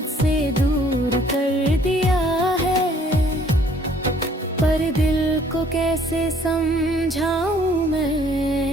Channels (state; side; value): normal; both; correlation 0.59